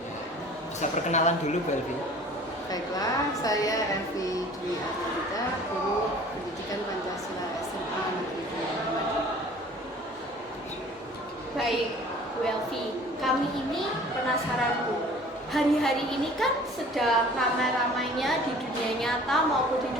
Bisa perkenalan dulu Bu Elvi. Baiklah, saya Elvi Dwi Arianita, Guru Pendidikan Pancasila SMA Negeri 2 Lumajang. Baik, Bu Elvi, kami ini penasaran Bu. Hari-hari ini kan sedang ramai-ramainya di dunia nyata maupun di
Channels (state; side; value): normal; both; correlation 0.48